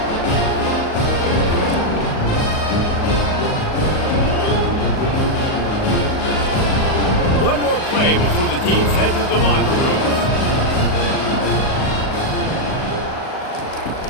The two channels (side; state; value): right; late; 38 ms